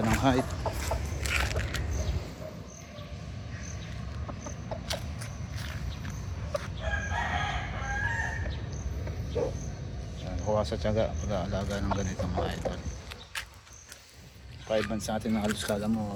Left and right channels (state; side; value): identical; both; correlation 1.00